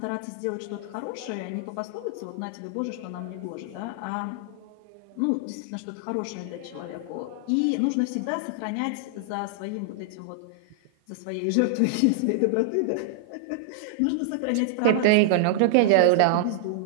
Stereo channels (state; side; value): different; both; correlation -0.01